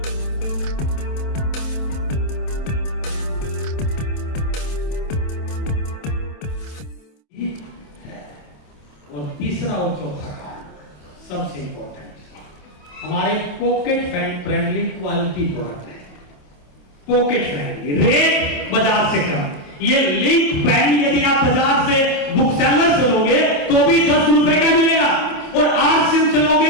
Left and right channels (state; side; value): late; right; 27 ms